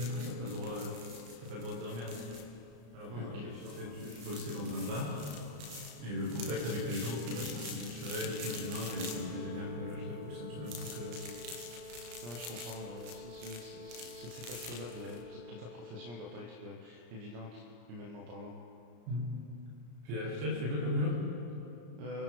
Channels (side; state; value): left; late; 34 ms